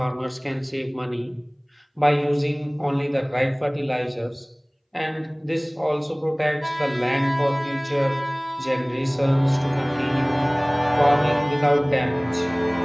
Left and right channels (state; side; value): identical; both; correlation 1.00